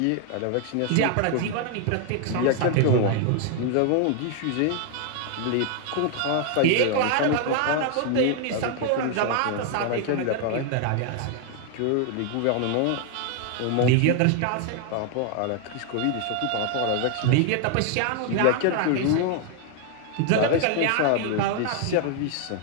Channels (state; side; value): different; both; correlation 0.00